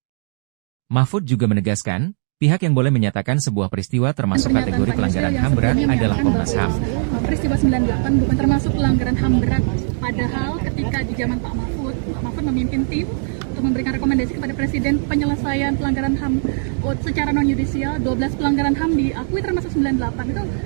Mahfud juga menegaskan, pihak yang boleh menyatakan sebuah peristiwa termasuk kategori pelanggaran HAM berat adalah Komnas HAM. Peristiwa 98 bukan termasuk pelanggaran HAM berat, padahal ketika di zaman Pak Mahfud memimpin tim untuk memberikan rekomendasi kepada Presiden penyelesaian pelanggaran HAM secara non-yudisial, 12 pelanggaran HAM diakui termasuk 98. Itu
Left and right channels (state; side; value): silent; left; digital silence